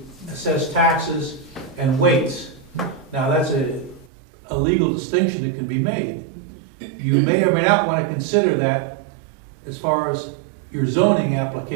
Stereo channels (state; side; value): drops out; left; at 4.0 s